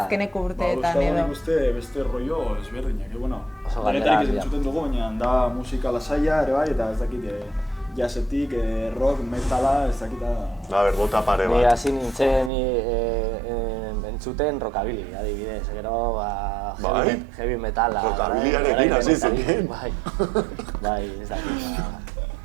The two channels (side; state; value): left; drops out; at 12.5 s